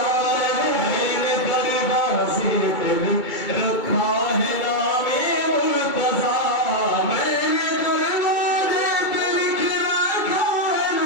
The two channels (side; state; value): right; late; 2.3 ms